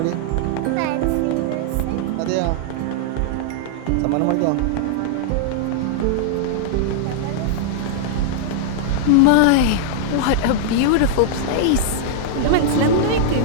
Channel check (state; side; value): different; both; correlation -0.01